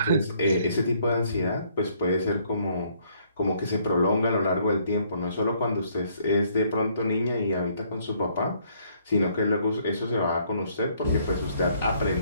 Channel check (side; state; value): both; inverted; correlation -0.65